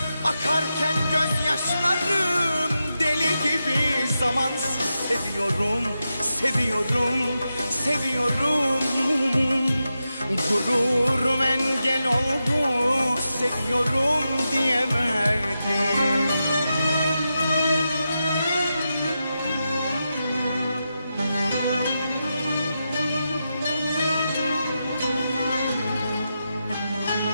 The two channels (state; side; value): inverted; both; correlation -0.89